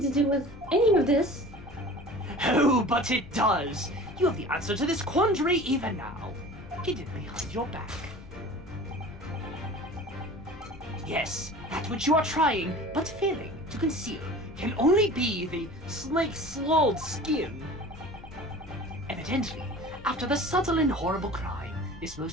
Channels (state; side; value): noise; left; rumble, 17 dB below the sound